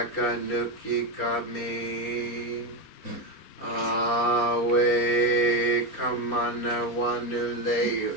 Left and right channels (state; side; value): late; right; 4.4 ms